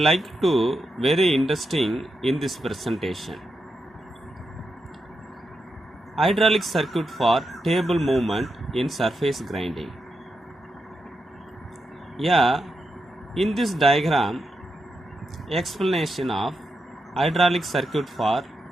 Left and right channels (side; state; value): both; normal; correlation 0.85